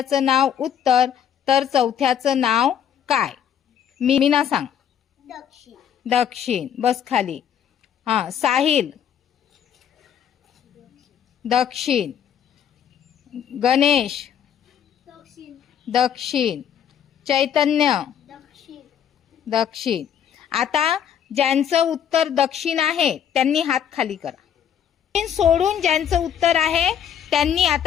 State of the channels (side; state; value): right; quieter; 9.1 dB